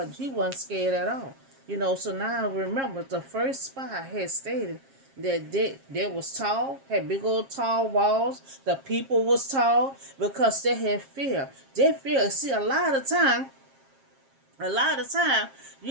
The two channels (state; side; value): late; left; 7.4 ms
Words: he wasn't scared at all. So now remember, the first spy had stated that they was tall, had big old tall walls. The people was tall because they had fear. They fear. See, a lot of time,